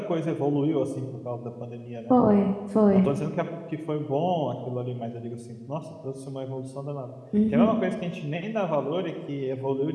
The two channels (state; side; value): identical; both; correlation 1.00